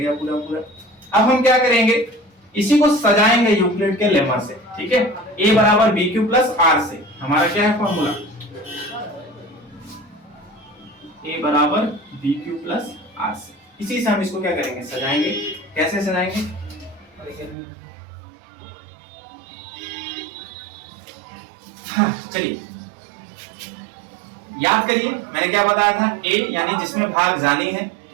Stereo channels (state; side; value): drops out; left; at 17.6 s